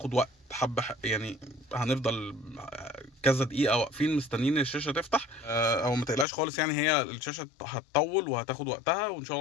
وقت حبه يعني. هنفضل كذا دقيقه واقفين مستنيين الشاشه تفتح، او ما تقلقش خالص يعني. هي الشاشه هتطول وهتاخد وقتها، وان شاء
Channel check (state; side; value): drops out; right; at 6.2 s